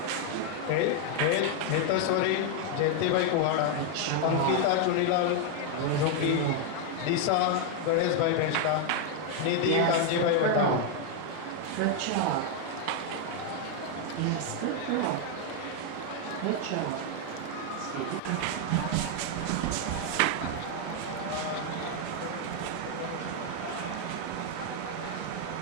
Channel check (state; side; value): different; both; correlation 0.00